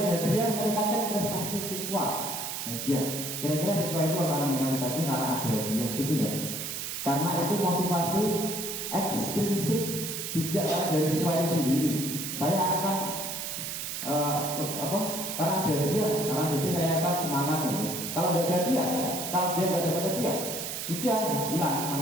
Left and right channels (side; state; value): right; noise; hiss, 5 dB below the sound